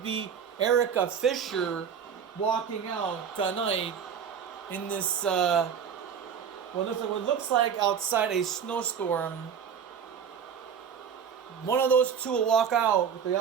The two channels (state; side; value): quieter; left; 7.5 dB